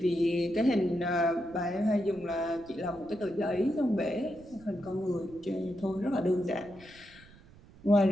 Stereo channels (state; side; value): noise; right; rumble, 23 dB below the sound